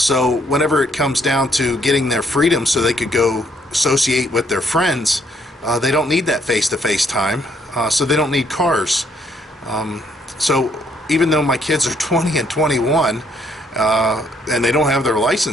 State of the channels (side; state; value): both; normal; correlation 0.69